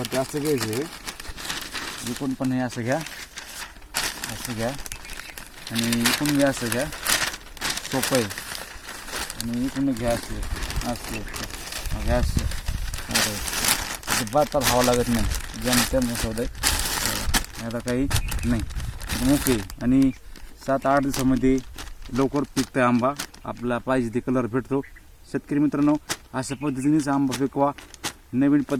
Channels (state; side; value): identical; both; correlation 1.00